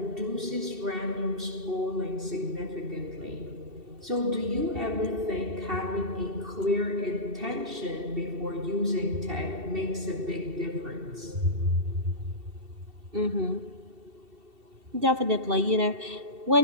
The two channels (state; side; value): late; left; 2.7 ms